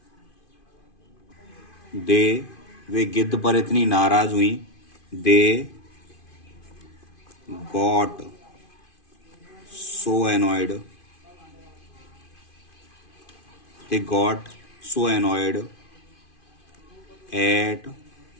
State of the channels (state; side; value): late; right; 2.5 ms